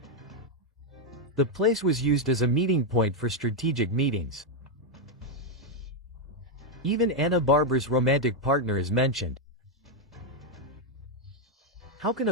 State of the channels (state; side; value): normal; both; correlation 0.02